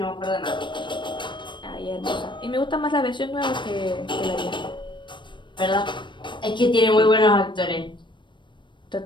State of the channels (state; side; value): late; right; 0.23 ms